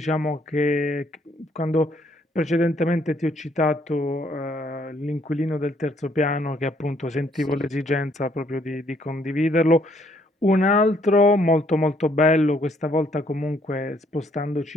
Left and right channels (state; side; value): normal; both; correlation 0.68